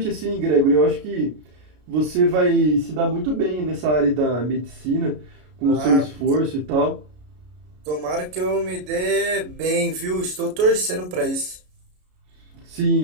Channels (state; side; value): late; left; 33 ms